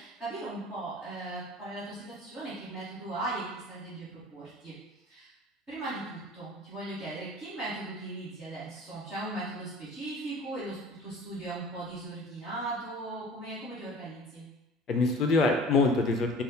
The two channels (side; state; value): both; normal; correlation 0.43